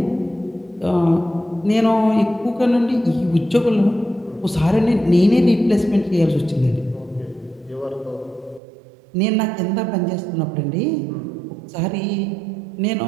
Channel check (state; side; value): drops out; left; at 8.6 s